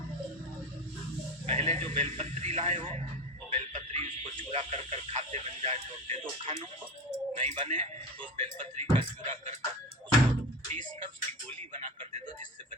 पहले जो बेलपत्री लाए हो वो बेलपत्री उसको चूरा कर कर खाते बन जाए तो दे दो खानों को, नहीं बने तो उस बेलपत्री का चूरा कर उसको पीस कर उसकी गोली बना कर दे दो, जिससे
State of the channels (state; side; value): normal; both; correlation 0.25